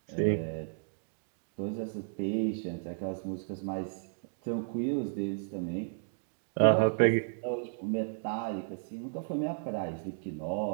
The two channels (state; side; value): silent; left; digital silence